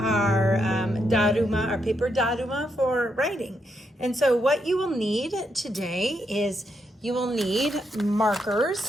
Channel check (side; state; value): both; normal; correlation 0.80